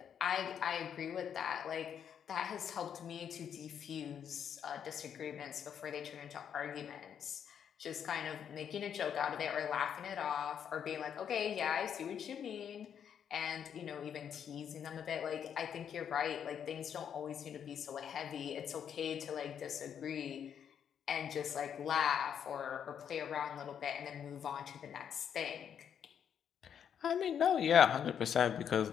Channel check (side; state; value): right; quieter; 8.4 dB